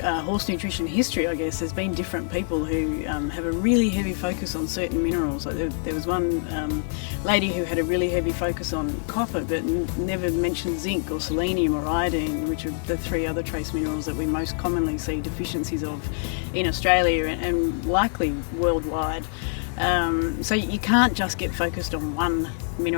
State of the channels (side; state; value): right; silent; 60 dB below the other